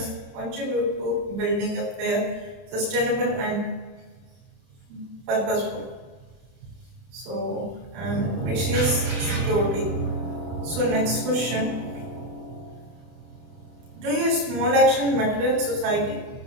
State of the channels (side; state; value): left; late; 32 ms